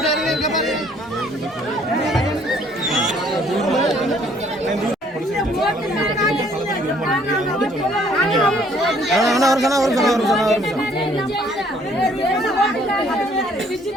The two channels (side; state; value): both; normal; correlation 0.62